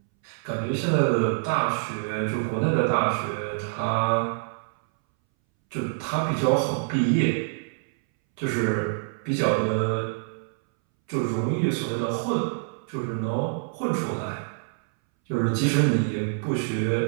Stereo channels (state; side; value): silent; left; 61 dB below the other